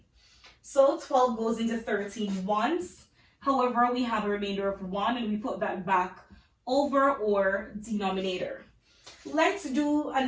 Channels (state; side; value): identical; both; correlation 1.00